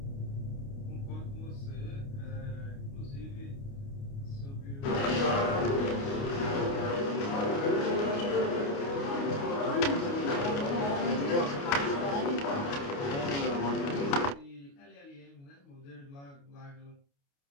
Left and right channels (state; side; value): late; right; 29 ms